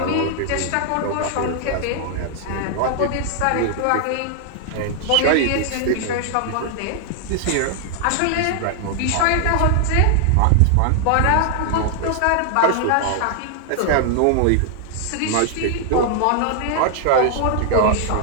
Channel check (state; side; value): different; both; correlation 0.00